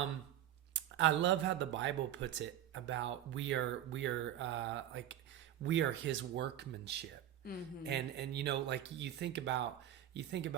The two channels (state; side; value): quieter; left; 11.5 dB